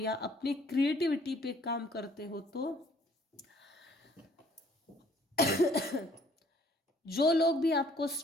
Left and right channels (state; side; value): normal; both; correlation 0.59